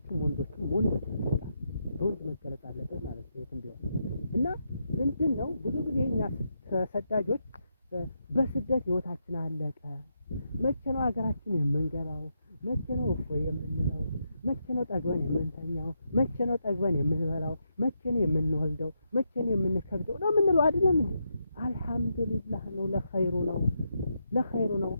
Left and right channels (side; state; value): both; inverted; correlation -0.82